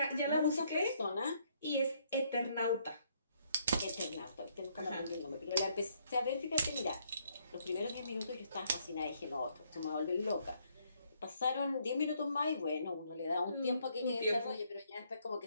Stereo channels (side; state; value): both; inverted; correlation -0.70